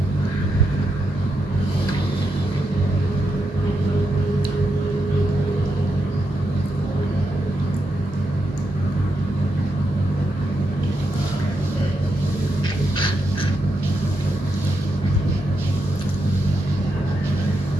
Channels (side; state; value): both; normal; correlation 0.83